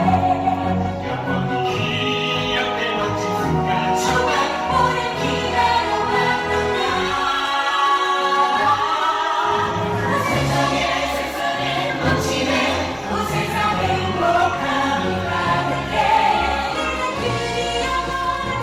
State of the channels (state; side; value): identical; both; correlation 1.00